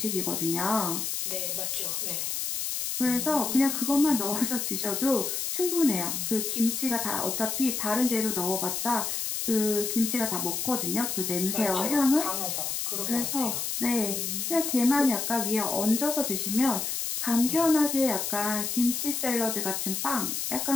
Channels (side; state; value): left; noise; hiss, 2 dB below the sound